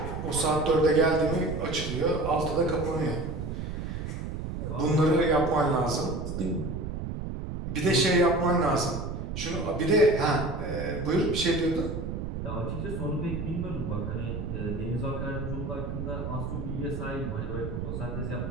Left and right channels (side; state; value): right; noise; rumble, 5 dB below the sound